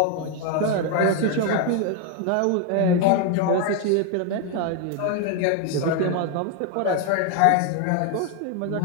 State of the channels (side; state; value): both; different; correlation 0.01